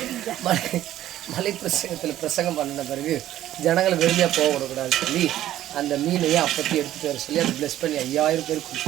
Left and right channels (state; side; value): quieter; left; 13.0 dB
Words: மலை பிரசங்கத்தில் பிரசங்கம் பண்ணின பிறகு ஜனங்களை வெறுமையாக போக விடக்கூடாதுன்னு சொல்லி அந்த மீனையும் அப்பத்தி எடுத்துகிட்டு வர சொல்லி அதை ப்ளஸ் பண்ணி 5000 பேர்